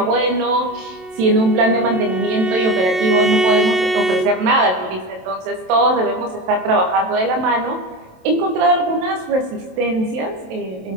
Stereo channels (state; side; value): late; left; 27 ms